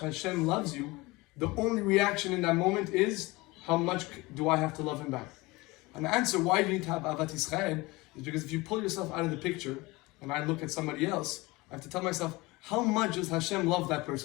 loves you, the only reaction in that moment is, how much do I have to love Him back? And the answer why you need to have Avat Yisrael is because if you pull yourself out of the picture, and I look at somebody else, I have to tell myself, how much does Hashem love that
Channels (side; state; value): right; quieter; 22.5 dB